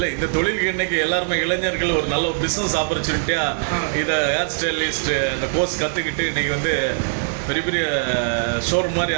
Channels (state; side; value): silent; left; digital silence